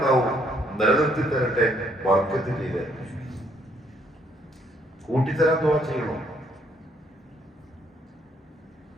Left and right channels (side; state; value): both; normal; correlation 0.69